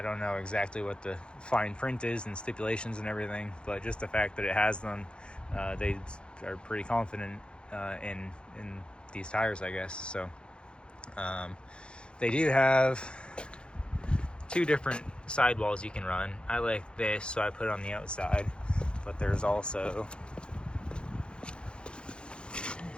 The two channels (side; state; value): right; late; 0.054 ms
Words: don't know exactly what the fine print is and stipulations and everything, but just the fact that it has them, they are pretty confident in these tires, I guess. So they do have two different sidewalls you can run. I like this, so I put it on the outside, but there's also